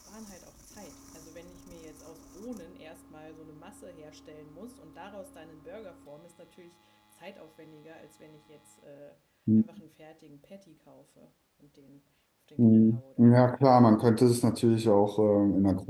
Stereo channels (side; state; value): both; identical; correlation 1.00